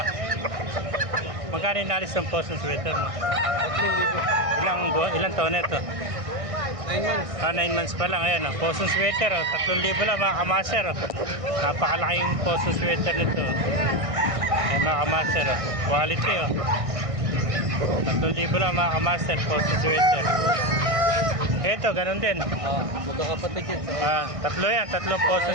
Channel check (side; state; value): left; late; 1.6 ms